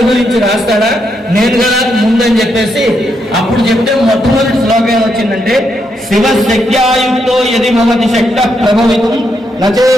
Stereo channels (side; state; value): both; normal; correlation 0.79